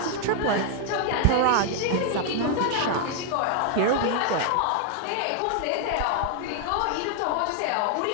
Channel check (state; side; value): different; both; correlation 0.00